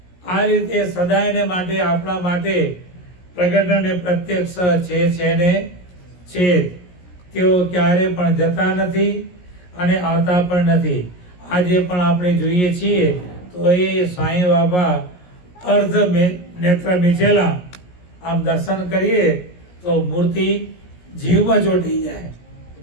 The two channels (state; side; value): late; right; 17 ms